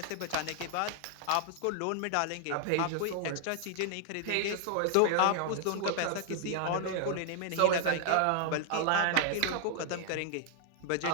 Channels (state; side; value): different; both; correlation 0.00